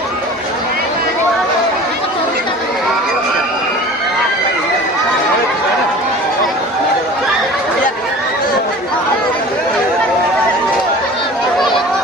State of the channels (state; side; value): normal; both; correlation 0.41